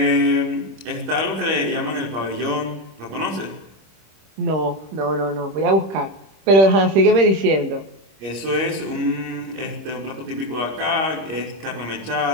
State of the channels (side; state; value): left; late; 26 ms